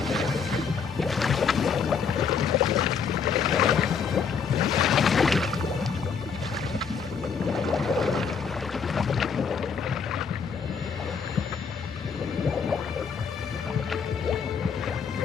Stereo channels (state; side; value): quieter; right; 6.2 dB